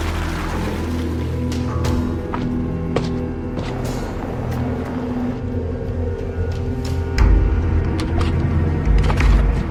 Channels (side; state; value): both; identical; correlation 1.00